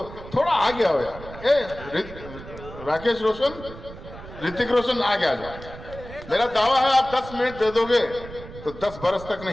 थोड़ा आगे आओ यार। राकेश रोशन, ऋतिक रोशन आगे आ जाओ। मेरा दावा है आप 10 मिनट दे दोगे तो 10 बरस तक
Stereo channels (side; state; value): right; noise; rumble, 15 dB below the sound